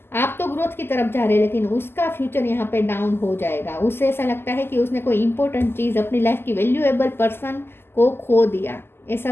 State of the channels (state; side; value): late; right; 0.11 ms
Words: आप तो ग्रोथ की तरफ जा रहे हैं, लेकिन उसका फ्यूचर यहाँ पे डाउन हो जाएगा। उससे ऐसा लगता है कि उसने कोई इंपॉर्टेंट चीज़, अपनी लाइफ की वैल्यूएबल पर्सन को खो दिया, ऐसा